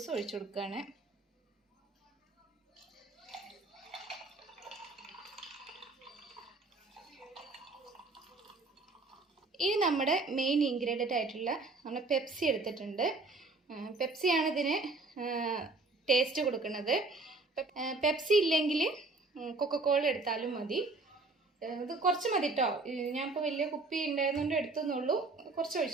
ഒഴിച്ചു കൊടുക്കുകയാണ്. ഇനി നമ്മുടെ മെയിൻ ഇൻഗ്രീഡിയൻ്റ് ആയിട്ടുള്ള നമ്മൾ പെപ്സി എടുത്തിട്ടുണ്ട്. പെപ്സിയാണ് ഇതിന് ടേസ്റ്റ് കൊടുക്കുന്നത്. പെപ്സി ഇല്ലെങ്കിൽ കൊക്കക്കോള എടുത്താലും മതി. ഇത് കുറച്ച് മതി കേട്ടോ. ഞാനിപ്പോൾ വലിയ കുപ്പി ഉണ്ടായിരുന്നുകൊണ്ട് എടുത്തുന്നുള്ളൂ. കുറച്ച്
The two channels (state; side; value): quieter; left; 3.5 dB